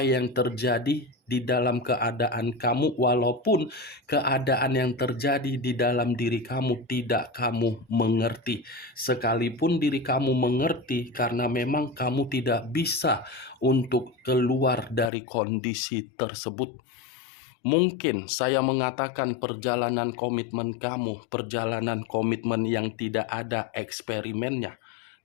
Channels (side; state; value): right; drops out; at 15.1 s